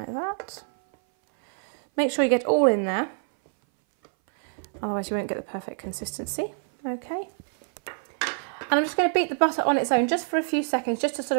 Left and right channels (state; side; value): silent; left; 59 dB below the other